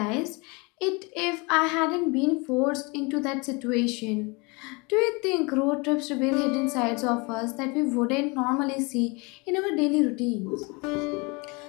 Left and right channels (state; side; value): quieter; right; 28.5 dB